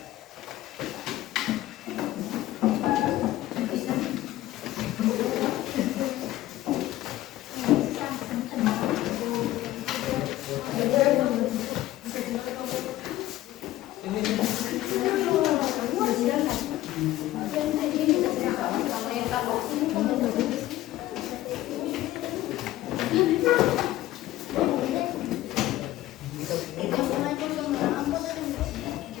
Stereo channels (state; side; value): quieter; right; 15.4 dB